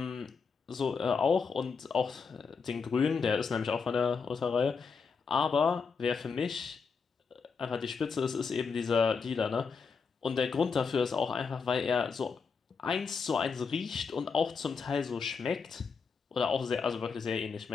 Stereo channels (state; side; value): quieter; right; 5.3 dB